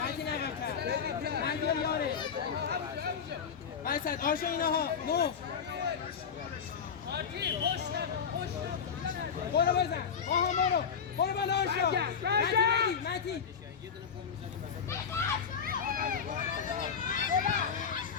متین عقب‌تر متین یاره وسط آشا اینها نو برو بزن آها برو بالا آشا متین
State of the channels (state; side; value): quieter; right; 6.8 dB